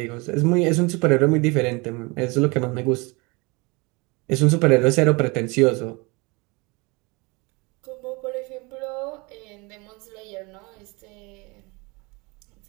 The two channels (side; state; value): left; quieter; 27.0 dB